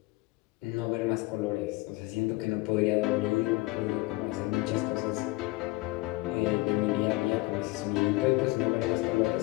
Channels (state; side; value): quieter; right; 21.9 dB